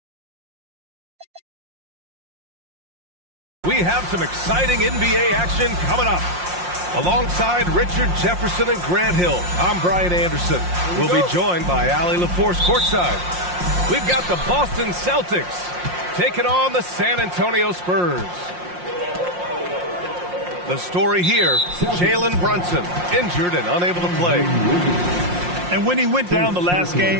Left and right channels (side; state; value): left; late; 5.6 ms